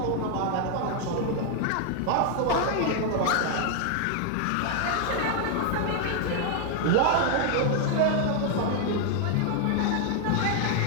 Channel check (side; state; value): both; different; correlation 0.00